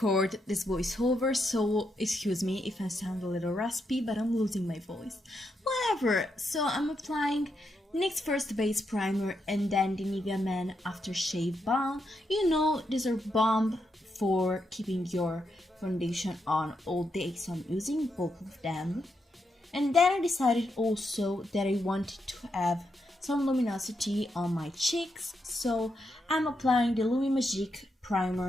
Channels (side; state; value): both; normal; correlation 0.82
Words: this voiceover, so excuse me if I sound a little raspy, but I'm losing my voice. Whatever, so I'm applying NYX First Base Primer and then the NIVEA Men Aftershave Balm. You know, these are balm for keeping your foundation on all day, so I'm using both of them. And then I decided also that I wanted to have some luminosity on my cheeks, so I'm applying the LUMI MAGIQUE